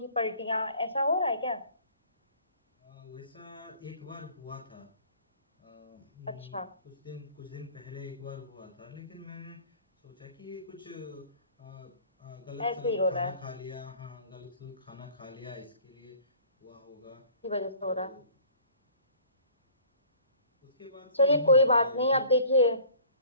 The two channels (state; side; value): inverted; both; correlation -0.49